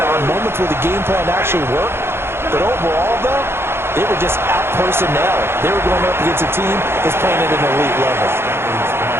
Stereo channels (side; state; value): left; late; 0.12 ms